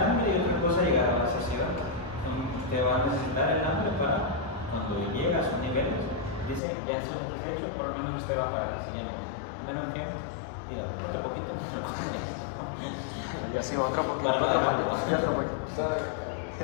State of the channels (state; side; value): drops out; right; at 6.6 s